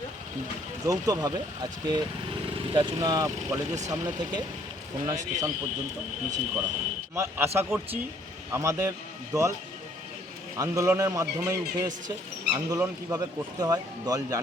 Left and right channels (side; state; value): both; normal; correlation 0.62